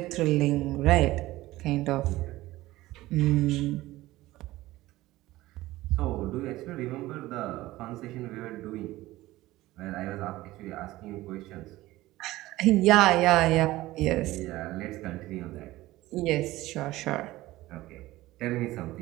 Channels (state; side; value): quieter; left; 17.4 dB